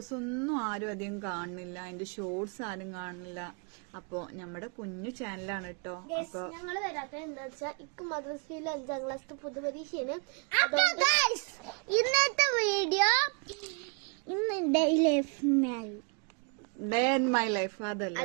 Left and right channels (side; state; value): left; quieter; 37.2 dB